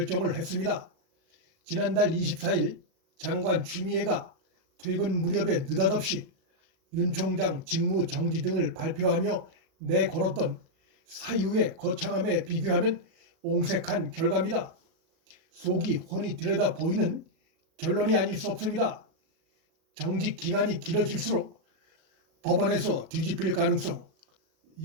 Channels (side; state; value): left; late; 37 ms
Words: 했습니다. 지난달 24일 장관 추미애가 퇴근 무렵에 느닷없이 윤 총장 직무 정지 등을 발표하며 내걸었던 사유의 거창함에 비교하면 옹색한 결과입니다. 속이 훤히 들여다 보이는 결론이 아닐 수 없습니다. 정직 기간이 길어질수록 법원에서 뒤집힐 가능성,